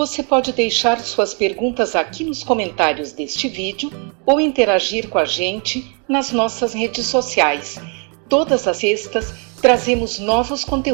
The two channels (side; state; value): left; quieter; 37.1 dB